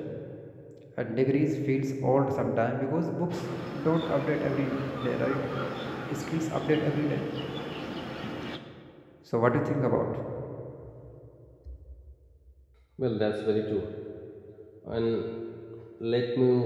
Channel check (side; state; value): both; identical; correlation 1.00